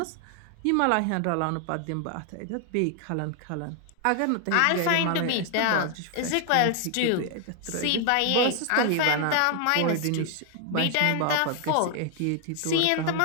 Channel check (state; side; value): different; both; correlation 0.00